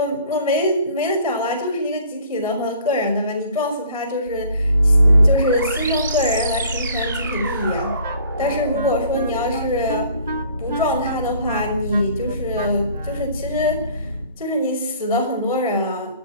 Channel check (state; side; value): inverted; both; correlation -0.53